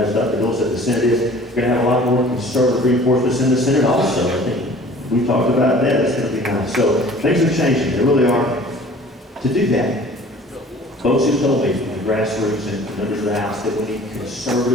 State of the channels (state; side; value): normal; both; correlation 0.48